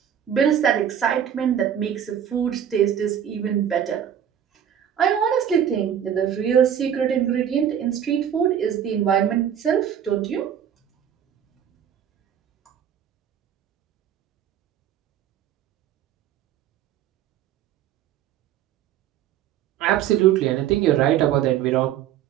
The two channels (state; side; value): quieter; left; 9.5 dB